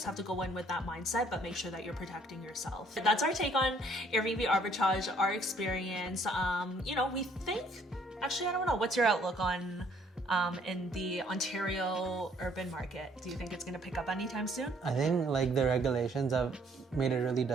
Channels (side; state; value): both; normal; correlation 0.62